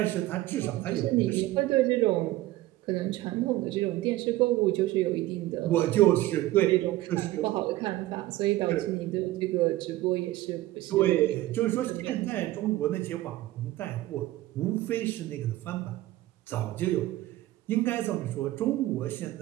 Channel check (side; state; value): left; quieter; 16.4 dB